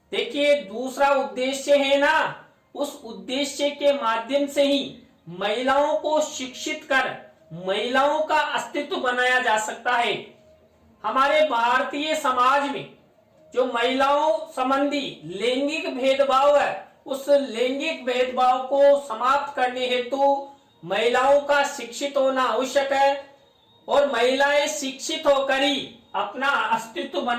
देखिए, दूसरा उद्देश्य है ना, उस उद्देश्य के माध्यम से ही महिलाओं को शिक्षित कर महिलाओं का अस्तित्व बनाया जा सकता है। हमारे भारतीय समाज में जो महिलाओं संबंधी लैंगिक भेदभाव है, उस लैंगिक भेदभाव को समाप्त करने हेतु महिलाओं का शिक्षित होना आवश्यक है और महिलाएं शिक्षित होकर ही अपना अस्तित्व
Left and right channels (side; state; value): both; identical; correlation 1.00